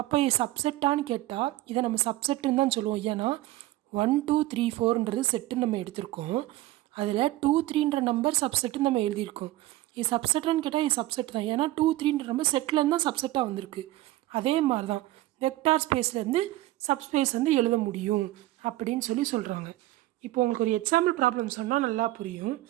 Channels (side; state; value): left; quieter; 16.6 dB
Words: இது சப்செட்டான்னு கேட்டால் இதை நம்ம சப்செட்டுன்னு தான் சொல்லுவோம். ஏன்னா 1 2 3 4ன்றது செட்டுன்னு நம்ம எடுத்திருக்கோம். அதில் 2 3ன்ற நம்பர் சப்செட்டுன்னு நம்ம எழுதியிருக்கோம். இது சப்செட்டான்னு கேட்டால் இது சப்செட் தான். ஏன்னா 2 3ன்ற நம்பர் செட்லேருந்து தான் சப்செட்டாக வந்திருக்கு. அதே மாதிரி தான் வெக்டார் ஸ்பேஸ்லேருந்து சப்ஸ்பேஸ் எழுத முடியும் அப்படின்னு சொல்கிறாங்க. இப்போ உங்களுக்கு ஒரு எக்ஸாம்பிள் ப்ராப்ளம் சொன்னால் நல்லா புரியும்.